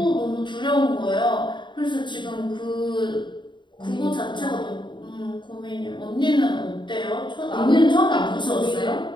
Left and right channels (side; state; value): right; late; 0.23 ms